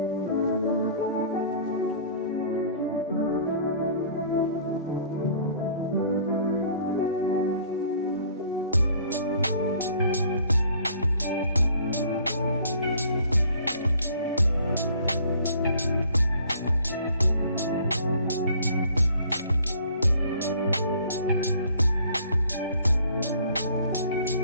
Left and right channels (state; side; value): inverted; both; correlation -0.54